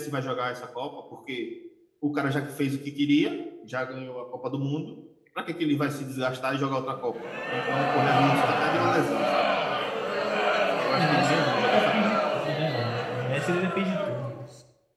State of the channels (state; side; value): identical; both; correlation 1.00